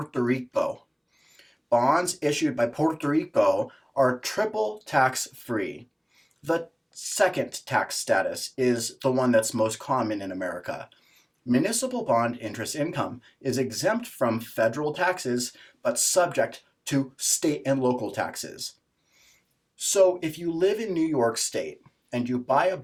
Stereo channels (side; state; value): both; identical; correlation 1.00